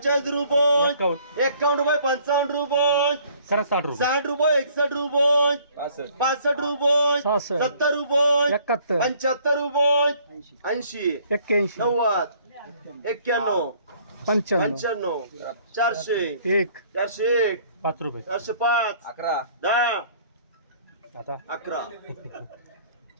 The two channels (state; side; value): inverted; both; correlation -0.59